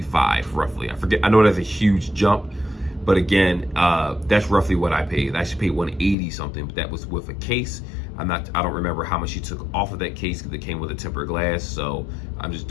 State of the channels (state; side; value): drops out; right; at 6.2 s